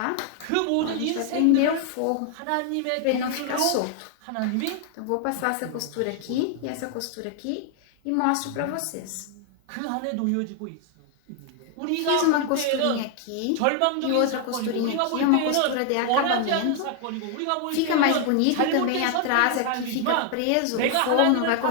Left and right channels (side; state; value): both; different; correlation 0.00